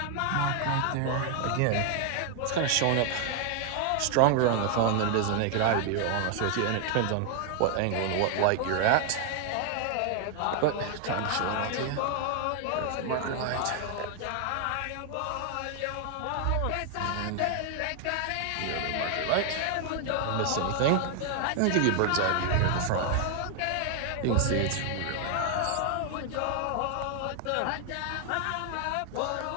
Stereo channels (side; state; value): both; different; correlation 0.00